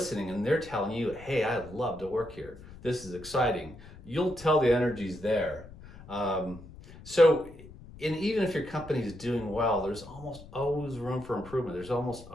and they're telling you, "Hey, I love to work here. This is exciting." You'll tell the energy's there. Even if your company's doing well, there's almost always room for improvement. There's almost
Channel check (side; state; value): left; noise; rumble, 18 dB below the sound